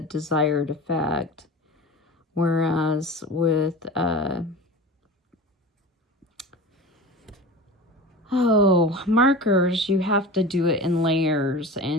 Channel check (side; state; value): both; normal; correlation 0.33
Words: desired effect, whereas with markers, you have to do it in layers,